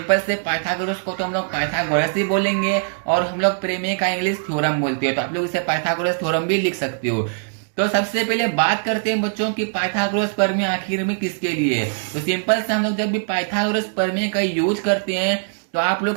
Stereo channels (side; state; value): left; silent; digital silence